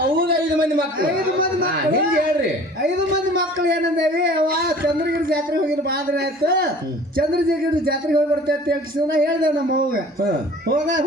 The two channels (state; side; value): normal; both; correlation 0.47